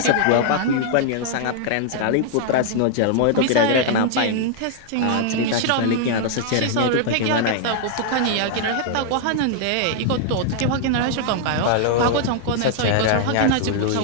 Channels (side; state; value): both; different; correlation -0.01